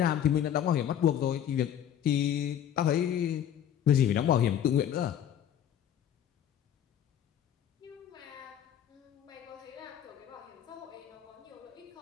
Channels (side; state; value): right; quieter; 10.0 dB